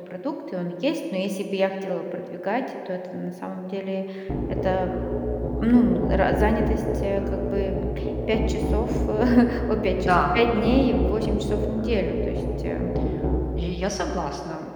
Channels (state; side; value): identical; both; correlation 1.00